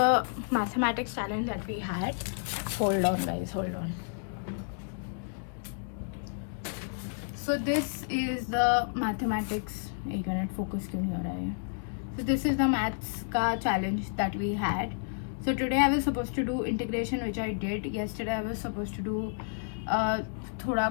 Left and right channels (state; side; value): silent; right; digital silence